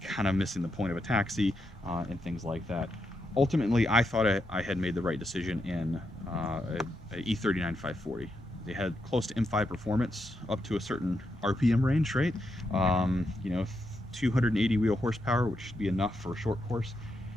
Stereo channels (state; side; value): normal; both; correlation 0.82